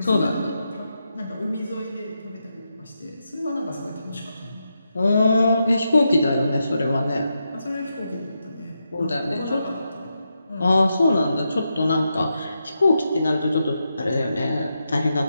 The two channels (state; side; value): inverted; both; correlation -0.86